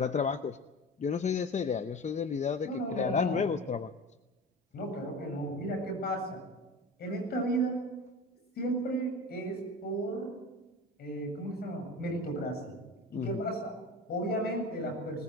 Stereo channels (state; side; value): normal; both; correlation 0.33